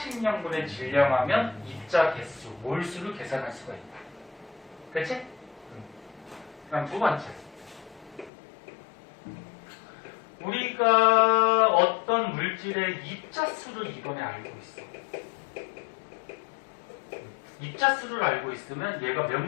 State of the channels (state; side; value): drops out; right; at 8.3 s